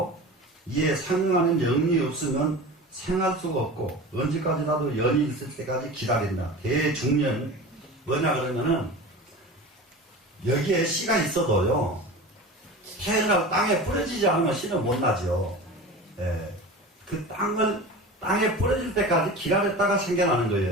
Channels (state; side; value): normal; both; correlation 0.33